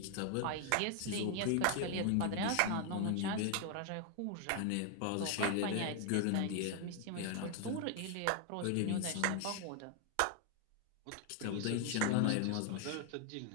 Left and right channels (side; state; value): both; different; correlation 0.00